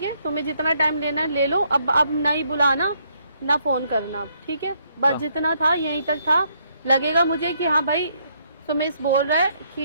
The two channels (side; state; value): both; inverted; correlation -0.71